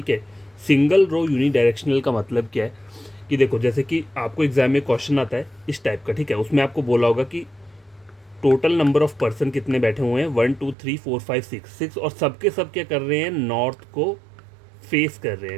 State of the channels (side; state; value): left; drops out; at 10.8 s